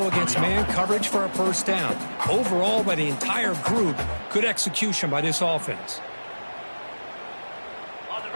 against man coverage for a 1st down. Overall, by the entire group, good execution by this offense.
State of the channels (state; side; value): inverted; both; correlation -1.00